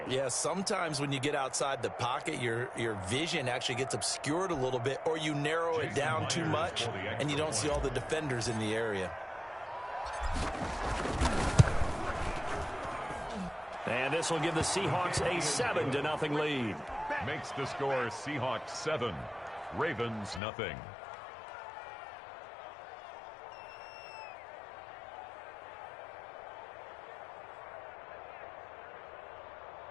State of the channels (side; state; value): right; drops out; at 20.4 s